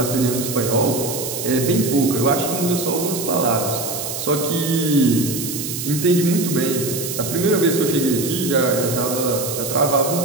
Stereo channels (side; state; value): right; noise; hiss, 6 dB below the sound